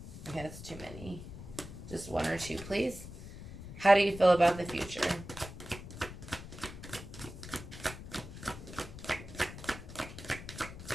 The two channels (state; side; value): noise; left; rumble, 12 dB below the sound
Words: Okay, that's too many. Just one or two, please. How do you feel about the future?